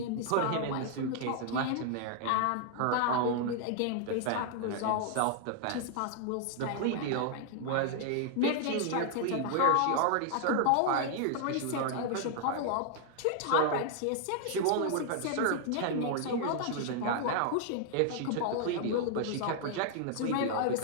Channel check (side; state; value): both; different; correlation 0.00